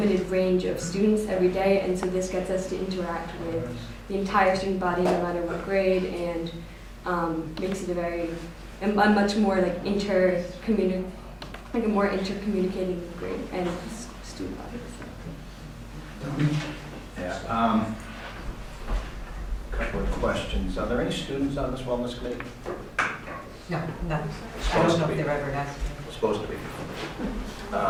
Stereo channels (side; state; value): both; identical; correlation 1.00